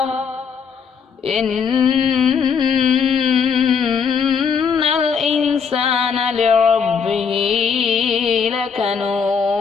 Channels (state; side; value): quieter; right; 6.3 dB